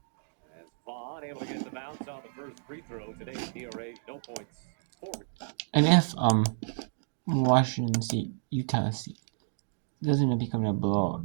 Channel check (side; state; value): left; silent; digital silence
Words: Vaughn able to get the bounce on the first free throw today, Niore no points forward. And if Washington State, Utah State doesn't end up becoming a blowout,